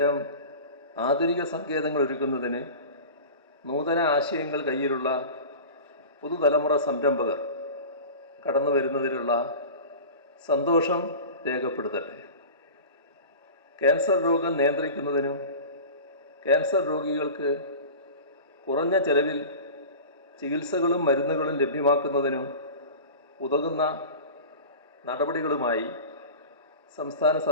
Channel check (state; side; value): inverted; both; correlation -0.35